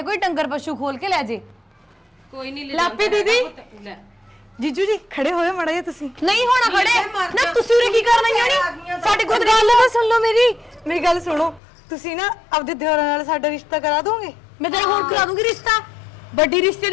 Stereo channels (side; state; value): right; drops out; at 11.6 s